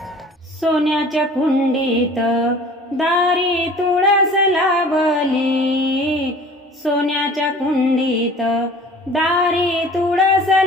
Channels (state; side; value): normal; both; correlation 0.46